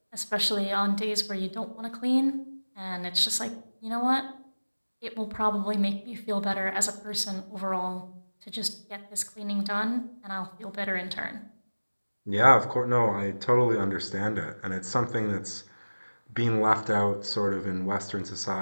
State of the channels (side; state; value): both; inverted; correlation -1.00